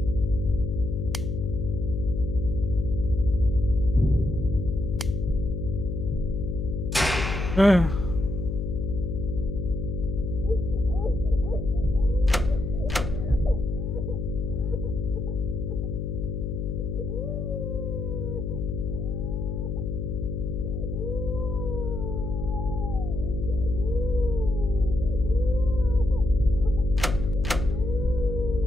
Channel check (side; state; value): left; noise; hum, 3 dB below the sound